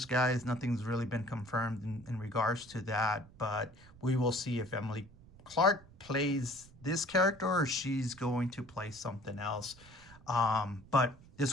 guys. Nothing's really been confirmed in regards to that, but we will see if Emily Clark plays this character or she's going to play something else. But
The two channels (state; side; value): noise; right; rumble, 23 dB below the sound